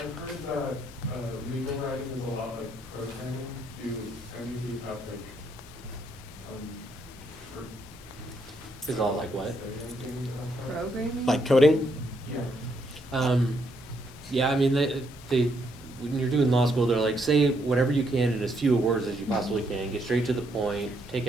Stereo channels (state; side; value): normal; both; correlation 0.74